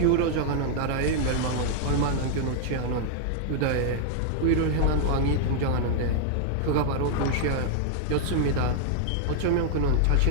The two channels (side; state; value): both; different; correlation -0.01